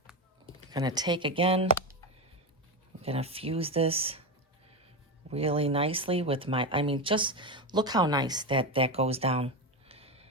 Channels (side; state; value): both; normal; correlation 0.15